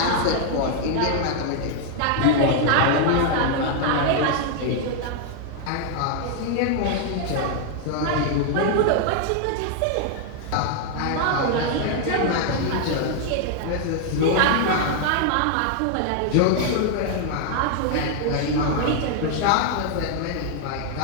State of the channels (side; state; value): both; different; correlation 0.00